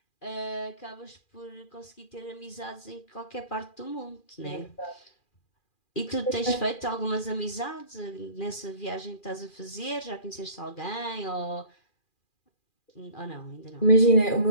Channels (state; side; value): late; right; 2.4 ms